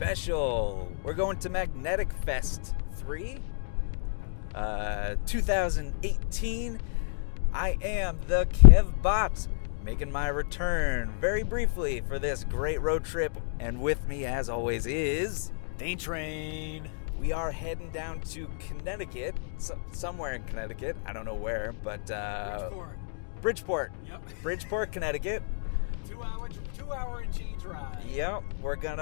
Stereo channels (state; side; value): silent; right; digital silence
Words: We're going to Magnetic Fest 3, 2018. I am the Kev Bot, making my return very briefly for this great road trip, and with me as always is Dane Train. We are heading down to Connecticut, somewhere in Connecticut. I don't know where, but Bridgeport. Yep. Bridgeport, Connecticut. 2 hour and change ride. Yep. We're